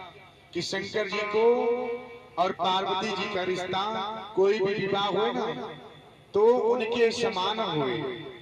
कि शंकर जी को और पार्वती जी का रिश्ता कोई भी विवाह हो ना तो उनके समान हुए।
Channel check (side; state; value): both; identical; correlation 1.00